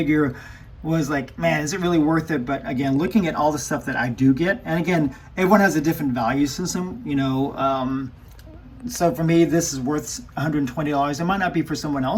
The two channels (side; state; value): both; identical; correlation 1.00